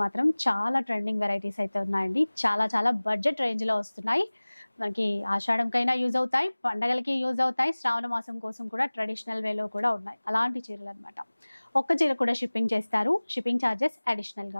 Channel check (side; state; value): both; inverted; correlation -1.00